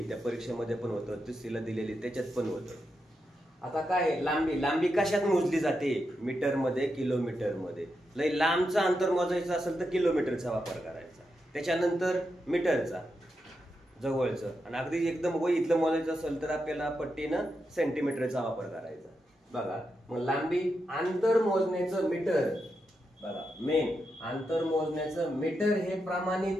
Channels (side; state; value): both; normal; correlation 0.86